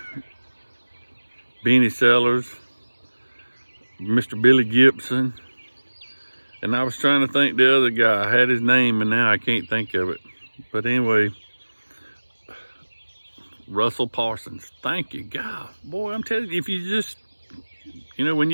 Benny Sellers, Mr. Billy Gibson, And I was trying to think the other guy. I had his name and now I can't think of it. But anyway, Russell Parsons. Thank you, God. Boy, I'm telling you, if you just, you know, when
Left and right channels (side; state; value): both; inverted; correlation -1.00